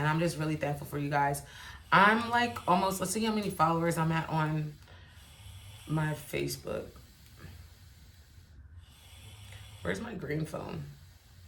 I'm just really thankful for you guys. I'm like almost, let's see how many followers I'm at on my Facebook. Where's my green phone?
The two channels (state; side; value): identical; both; correlation 1.00